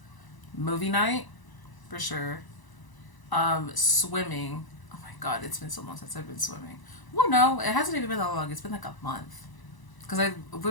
movie night, for sure. Swimming. Oh my god, it's been so long since I've been swimming. Well, no, it hasn't even been that long. It's been like a month. Because I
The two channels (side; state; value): right; late; 1.0 ms